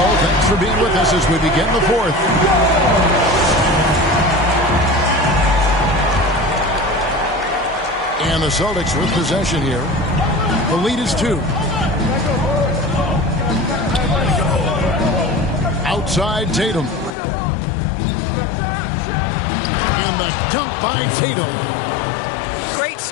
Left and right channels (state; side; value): drops out; right; at 17.1 s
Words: Thanks for being with us as we begin the fourth. And the Celtics with possession here. The lead is 2. Outside Tatum. And the dunk by Tatum. Great